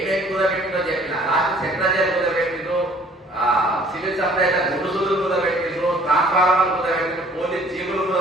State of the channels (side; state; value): both; normal; correlation 0.55